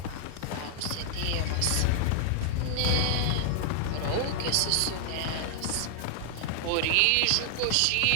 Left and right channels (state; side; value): different; both; correlation -0.01